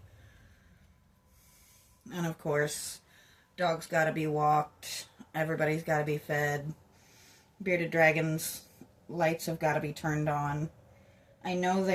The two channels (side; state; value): both; identical; correlation 1.00